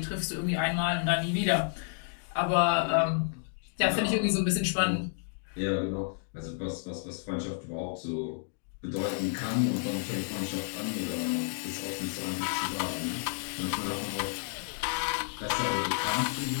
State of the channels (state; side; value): silent; right; 57 dB below the other